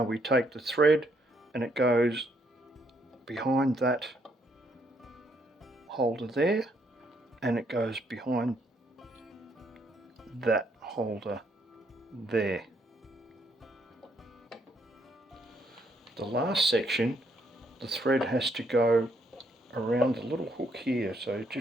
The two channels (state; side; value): normal; both; correlation 0.72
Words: we take the thread and it goes behind that holder there, and it goes behind that holder there. The last section, the thread has to go around the little hook here, so